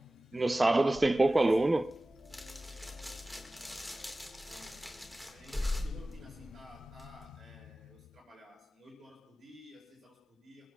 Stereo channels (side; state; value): both; normal; correlation 0.97